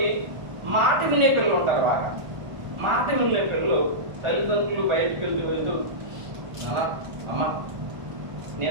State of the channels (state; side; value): late; left; 1.4 ms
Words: మాట వినే పిల్లలు ఉంటారు. బాగా మాట వినే పిల్లలు తల్లిదండ్రులు బయటకు వెళ్తూ అమ్మ